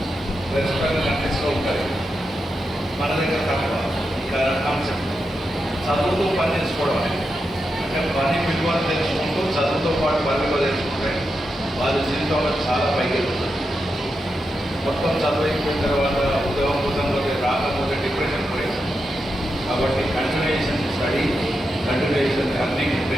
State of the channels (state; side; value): normal; both; correlation 0.87